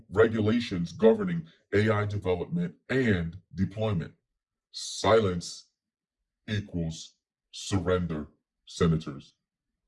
regulations governing AI development and deployment. Silence equals surrender, senators.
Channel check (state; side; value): identical; both; correlation 1.00